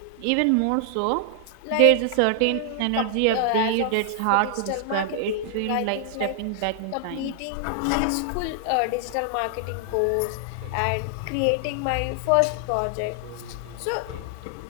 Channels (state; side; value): different; both; correlation 0.00